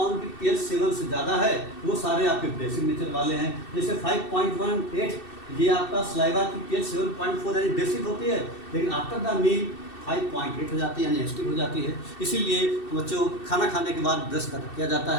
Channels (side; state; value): right; late; 2.7 ms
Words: की पीएच 7 से ज़्यादा है वो सारे आपके बेसिक नेचर वाले हैं। जैसे 5.18 ये आपका सलाइवा की पीएच 7.4 यानी बेसिक होती है, लेकिन आफ्टर द मील 5.8 हो जाती है, यानी एसिडिक हो जाती है। इसीलिए बच्चों खाना खाने के बाद ब्रश किया जाता